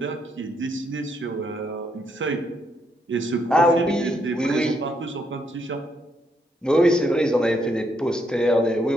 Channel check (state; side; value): normal; both; correlation 0.75